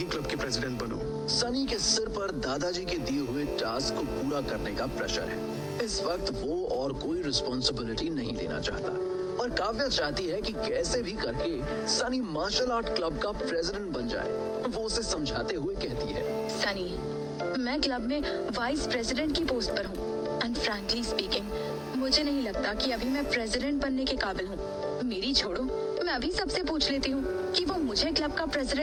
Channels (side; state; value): both; identical; correlation 1.00